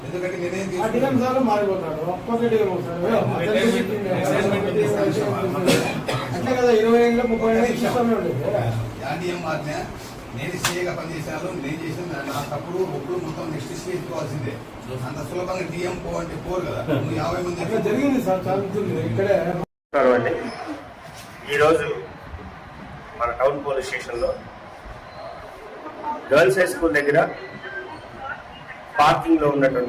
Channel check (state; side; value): identical; both; correlation 1.00